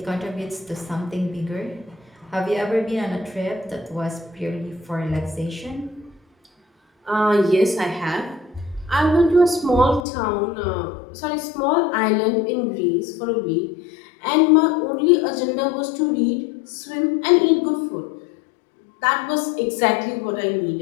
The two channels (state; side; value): drops out; right; at 10.1 s